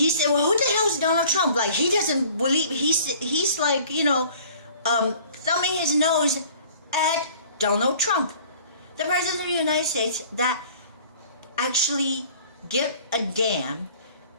said, well, who the hell is Donald Trump? Like, he doesn't believe, he's like, thumbing his nose at Donald Trump, the president of the United States, that actually get a damn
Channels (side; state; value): both; inverted; correlation -0.50